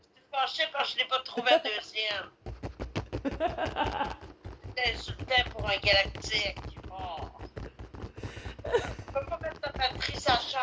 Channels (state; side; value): identical; both; correlation 1.00